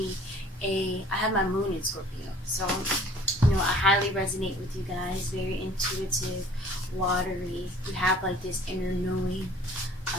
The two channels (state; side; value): normal; both; correlation 0.51